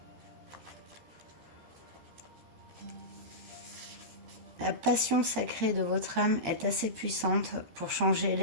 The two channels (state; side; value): late; left; 13 ms